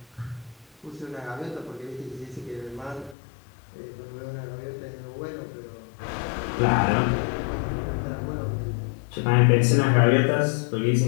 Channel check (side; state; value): right; drops out; at 3.2 s